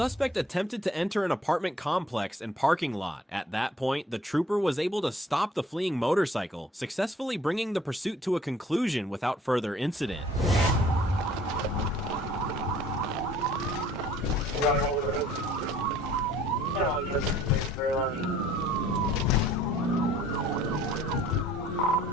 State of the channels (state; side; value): normal; both; correlation 0.56